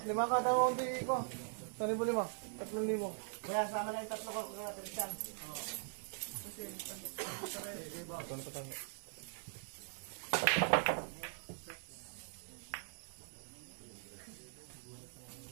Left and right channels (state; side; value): silent; left; digital silence